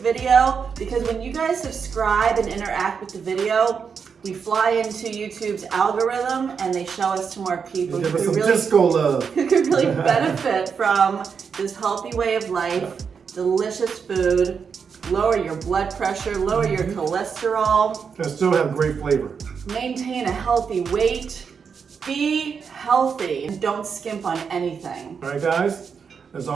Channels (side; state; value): left; quieter; 6.2 dB